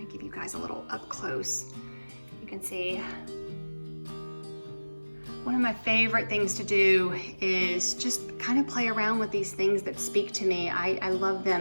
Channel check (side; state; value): both; inverted; correlation -1.00